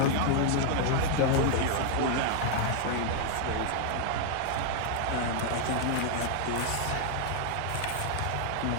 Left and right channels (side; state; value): both; different; correlation 0.00